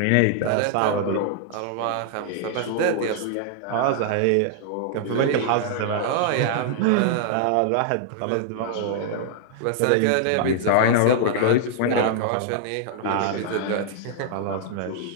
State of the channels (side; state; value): both; different; correlation -0.01